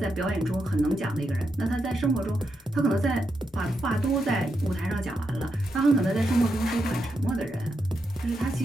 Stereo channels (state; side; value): normal; both; correlation 0.84